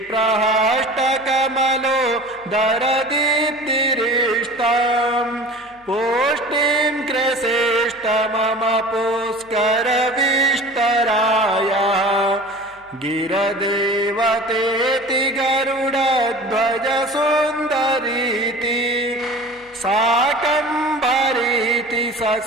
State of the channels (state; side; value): noise; left; hum, 30 dB below the sound